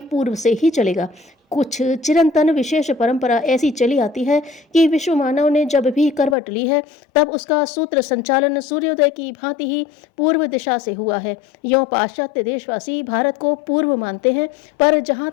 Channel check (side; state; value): right; drops out; at 6.4 s